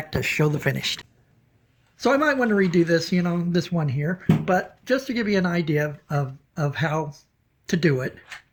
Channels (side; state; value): both; identical; correlation 1.00